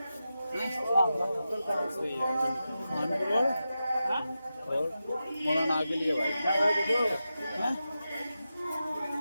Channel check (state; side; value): inverted; both; correlation -0.91